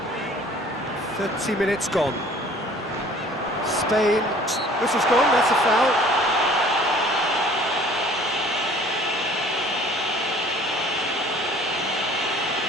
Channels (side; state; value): both; normal; correlation 0.52